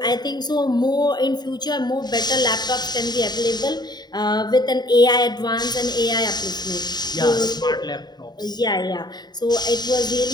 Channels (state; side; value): late; right; 0.20 ms